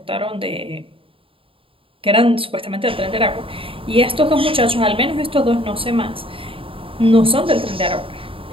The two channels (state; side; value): late; left; 0.26 ms